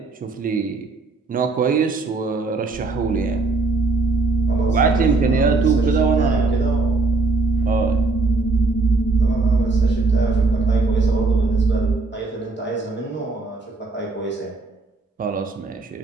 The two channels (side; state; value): left; quieter; 3.6 dB